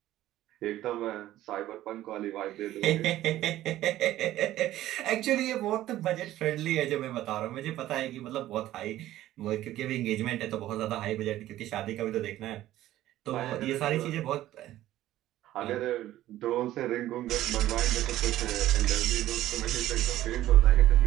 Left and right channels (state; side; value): quieter; left; 14.3 dB